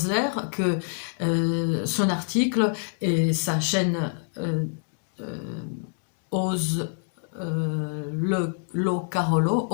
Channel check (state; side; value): silent; right; digital silence